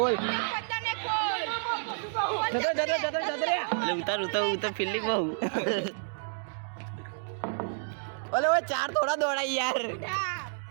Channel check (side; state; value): left; silent; digital silence